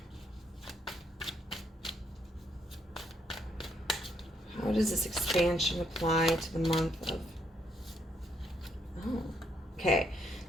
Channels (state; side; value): normal; both; correlation 0.73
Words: How does this expansion apply to the month of... Oh, okay.